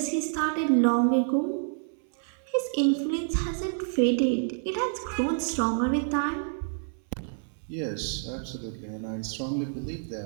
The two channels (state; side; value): silent; left; 59 dB below the other